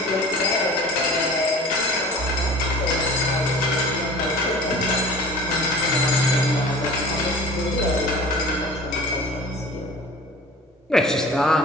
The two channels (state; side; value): normal; both; correlation 0.42